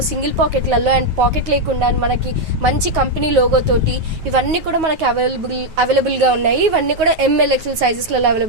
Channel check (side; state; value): left; late; 9.4 ms